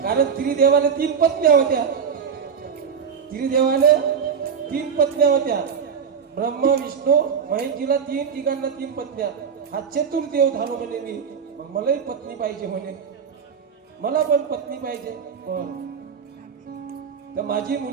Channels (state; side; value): quieter; left; 6.9 dB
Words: कारण त्रिदेवाला 3 पत्न्या होत्या. त्रिदेवाला 3 पत्न्या होत्या. ब्रह्मा विष्णू महेशजीला तिघांना 3 पत्न्या. हा चतुर्देव झालो म्हणे मी. मग मलाही पत्नी पाहिजे म्हणे, मला पण पत्नी पाहिजे. तर माझी